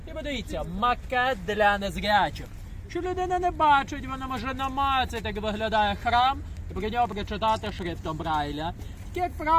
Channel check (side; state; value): both; identical; correlation 1.00